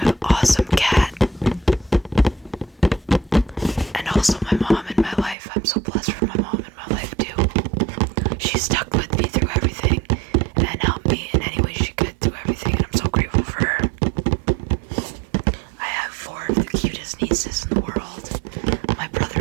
awesome cat, and also my mom in my life. I'm so blessed for my mom in my life too. She stuck with me through everything and helped me in any way she could through everything, and I'm so grateful for her. I have 4 of the cutest nieces in the world. My brother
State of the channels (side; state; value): left; drops out; at 5.4 s